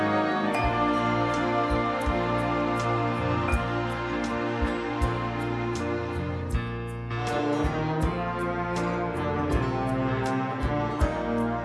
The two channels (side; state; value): both; identical; correlation 1.00